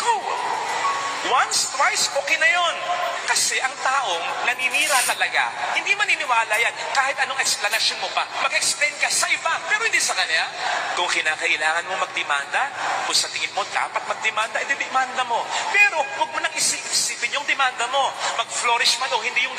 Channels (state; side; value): identical; both; correlation 1.00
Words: Once, twice, okay na yon. Kasi ang taong naninira talaga, hindi maniniwala yan. Kahit anong explanation mo pa, mag-explain ka sa iba, pero hindi sa kanya. Kung kinakailangan mo magdemanda, kung sa tingin mo dapat magdemanda, edi-demanda mo. Pero huwag mo nang isipin yung demanda mo. Mag-flourish man o hindi